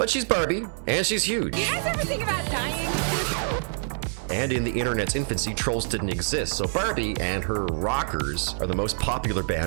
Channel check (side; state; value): left; silent; digital silence